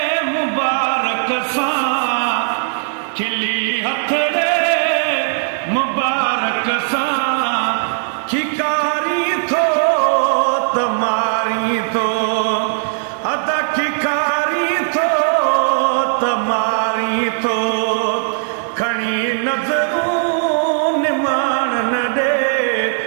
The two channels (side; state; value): left; silent; digital silence